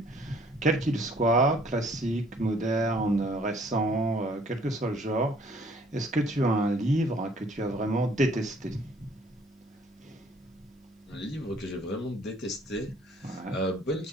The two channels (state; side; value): normal; both; correlation 0.59